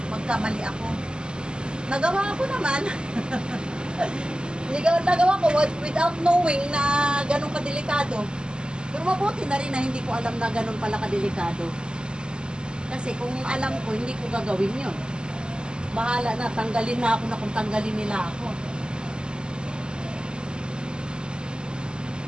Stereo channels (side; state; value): left; late; 0.048 ms